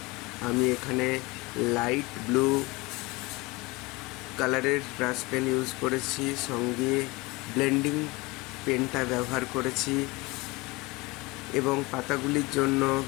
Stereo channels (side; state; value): right; quieter; 23.6 dB